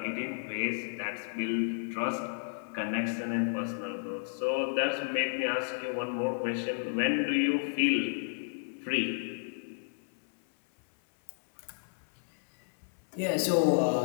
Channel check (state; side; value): silent; right; 56 dB below the other